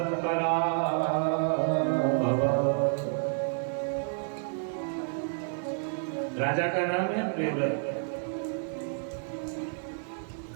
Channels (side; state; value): left; silent; 58 dB below the other